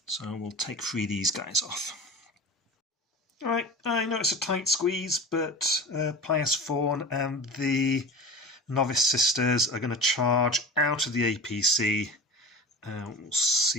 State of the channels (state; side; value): normal; both; correlation 0.32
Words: So we'll take 3 of these guys off. Alright, I know it's a tight squeeze, but Pious Fawn and the Novice Sisters are going to charge out of the APC. We'll